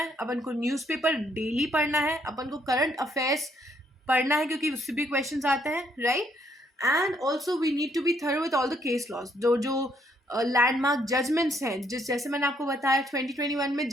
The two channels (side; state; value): both; normal; correlation 0.70